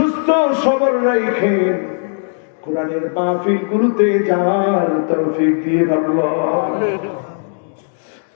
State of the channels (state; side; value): silent; right; digital silence